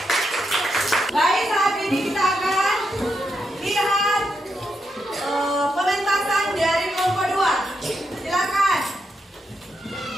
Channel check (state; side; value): normal; both; correlation 0.83